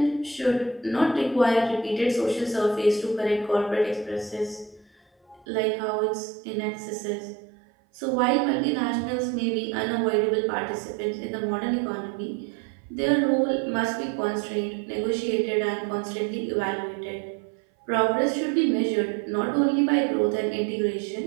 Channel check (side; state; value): left; drops out; at 5.5 s